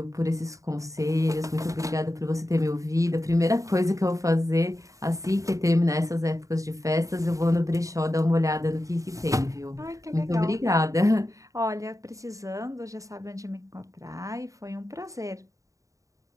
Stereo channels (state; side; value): late; left; 0.16 ms